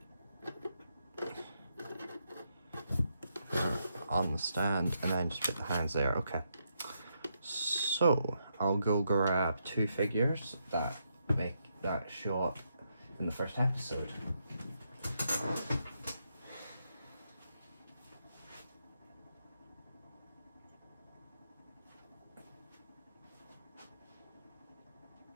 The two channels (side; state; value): both; inverted; correlation -0.80